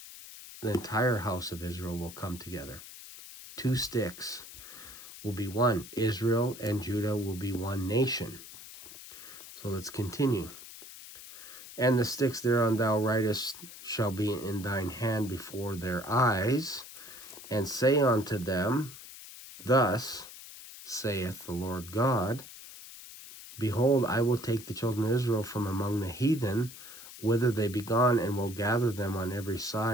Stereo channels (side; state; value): left; noise; hiss, 15 dB below the sound